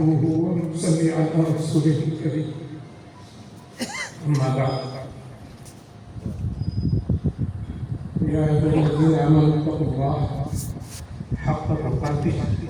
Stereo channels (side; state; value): both; identical; correlation 1.00